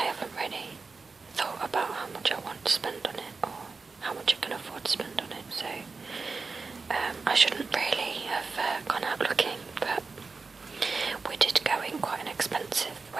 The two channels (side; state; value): left; quieter; 4.3 dB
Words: haven't really thought about how much I want to spend on it or how much I can afford to spend on it, so I shouldn't really have gone out looking, but we did go in quite an expensive